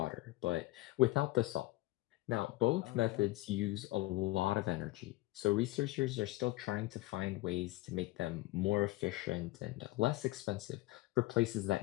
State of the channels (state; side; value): quieter; right; 18.8 dB